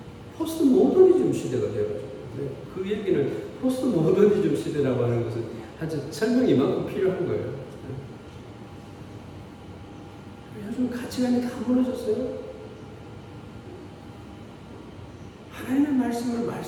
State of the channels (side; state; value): both; identical; correlation 1.00